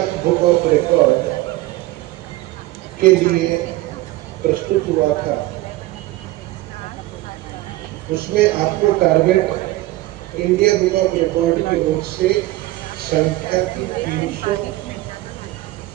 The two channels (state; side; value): quieter; left; 18.0 dB